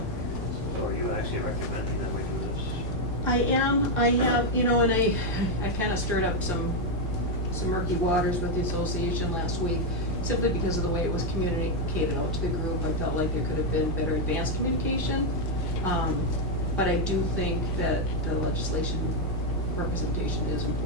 So are you actually recommending that we do this? I have, and I kind of stirred up some murky waters with the association last week, simply because of the way it was communicated out to the group. I felt like there could have been better advanced communication. But I do think that the legislation representation is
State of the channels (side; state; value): both; normal; correlation 0.02